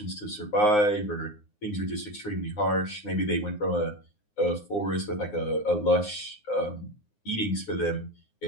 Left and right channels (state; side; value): late; right; 9.6 ms